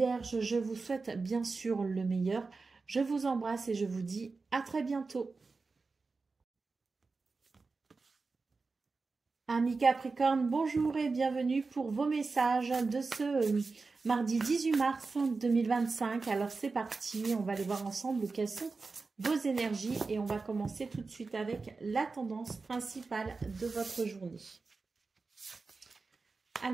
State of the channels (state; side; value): quieter; left; 4.1 dB